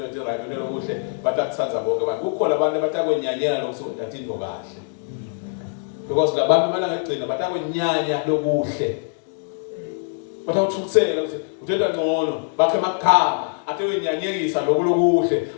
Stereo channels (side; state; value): right; silent; 62 dB below the other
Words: ethi right lokuhle batakutsanza bonke abantu kukhona abantu abatakwenyanyela lokuthi wenza into kahle because labantu bana ngegcina batakwenyanya lokuhle batawuthuthela ukuthi uthetha ngcono bakhe emakhaya ate wenyanyekisa lokuhle